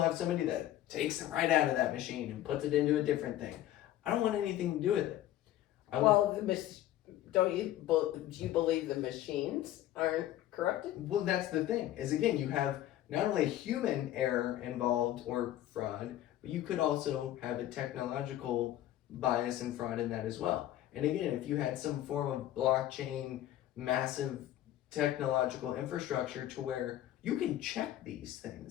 somebody that takes it right out of that machine and puts it into a different thing. I don't want anything to do with it. Do you believe the machines aren't corrupted? Well, that's the thing. Is again, you have not only human error involved or fraud, but you could also have a technological bias and fraud in that as well. And again, if you had some form of blockchain, massive technological infrastructure to where you can check these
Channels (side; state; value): right; quieter; 13.4 dB